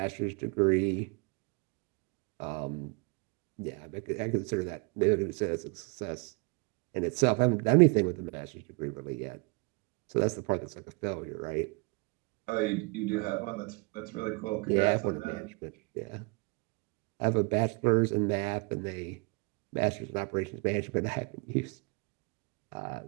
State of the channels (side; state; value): left; quieter; 30.4 dB